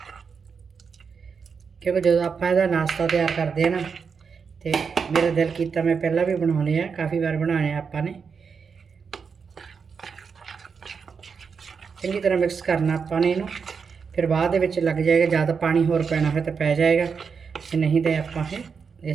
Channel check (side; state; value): left; quieter; 5.8 dB